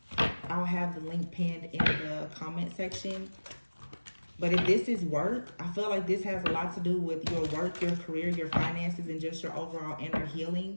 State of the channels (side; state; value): both; inverted; correlation -1.00